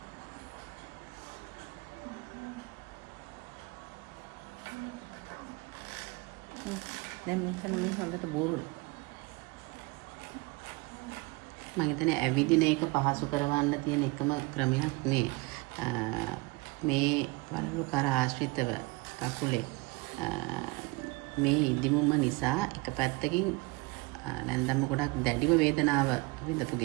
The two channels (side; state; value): left; quieter; 25.7 dB